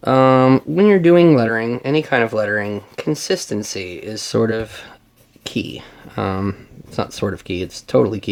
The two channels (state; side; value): identical; both; correlation 1.00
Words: when you're doing lettering, any kind of lettering, consistency is sort of key. It's not sort of key, it's totally